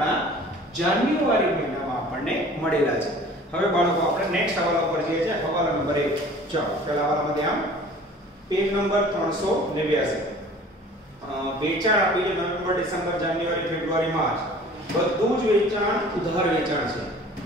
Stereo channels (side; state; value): both; normal; correlation 0.47